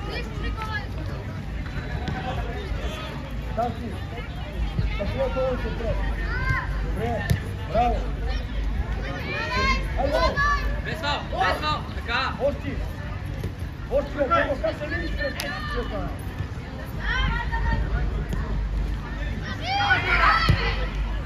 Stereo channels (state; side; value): identical; both; correlation 1.00